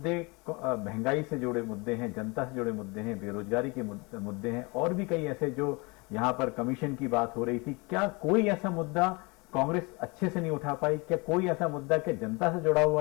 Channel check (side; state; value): right; quieter; 27.6 dB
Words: महंगाई से जुड़े मुद्दे हैं, जनता से जुड़े मुद्दे हैं, बेरोजगारी के मुद्दे हैं, और भी कई ऐसे जो यहाँ पर कमीशन की बात हो रही थी, क्या कोई ऐसा मुद्दा कांग्रेस अच्छे से नहीं उठा पाई? क्या कोई ऐसा मुद्दा कि जनता से जुड़ा